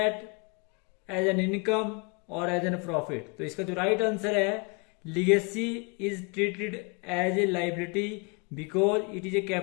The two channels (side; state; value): right; quieter; 32.7 dB